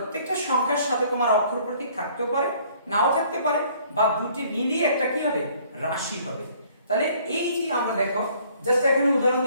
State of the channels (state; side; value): inverted; both; correlation -0.59